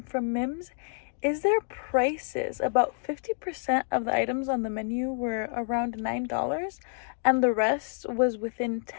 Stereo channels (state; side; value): silent; right; digital silence